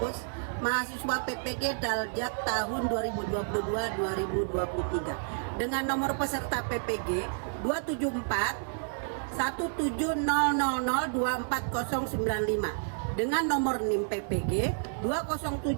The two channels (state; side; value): silent; left; digital silence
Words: mahasiswa PPG Daljak tahun 2022-2023 dengan nomor peserta PPG 274 17000249095 dengan nomor NIM PPG